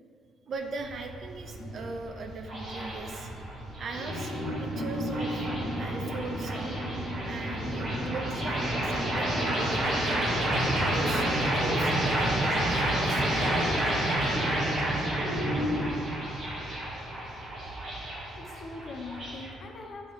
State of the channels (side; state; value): both; normal; correlation 0.72